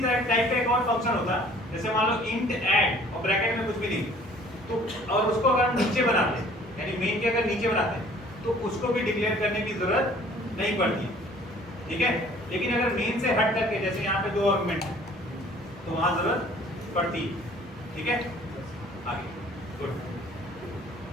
टाइप का एक और फंक्शन होता, जैसे मान लो इंट ऐड और ब्रैकेट में कुछ भी नहीं, तो और उसको अगर हम नीचे बनाते, यानी मेन के अगर नीचे बनाते तो उसको भी डिक्लेयर करने की जरूरत नहीं पड़ती, ठीक है। लेकिन अगर मेन से हट करके, जैसे यहाँ पे दो आर्गुमेंट है, तो वहां जरूरत पड़ती, ठीक है। आगे गुड।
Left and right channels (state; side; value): normal; both; correlation 0.53